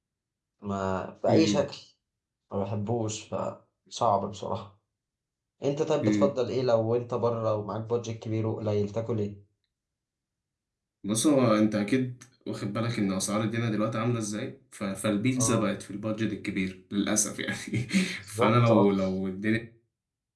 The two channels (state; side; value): identical; both; correlation 1.00